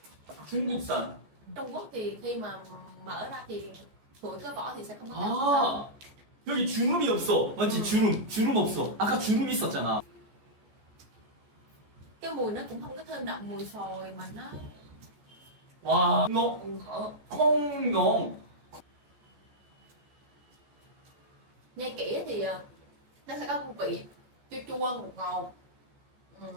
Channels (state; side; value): late; left; 14 ms